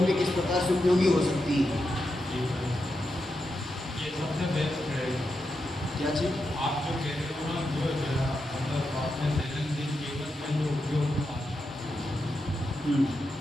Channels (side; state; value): both; normal; correlation 0.87